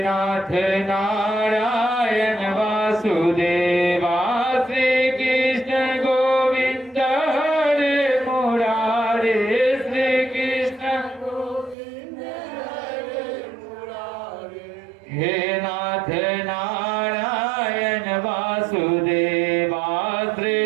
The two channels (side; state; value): left; drops out; at 11.8 s